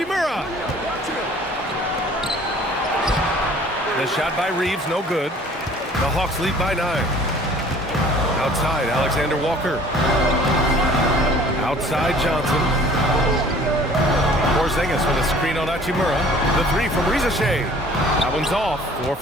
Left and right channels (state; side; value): normal; both; correlation 0.51